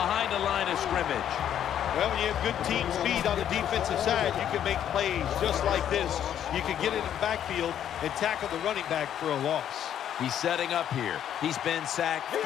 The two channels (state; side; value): quieter; right; 10.1 dB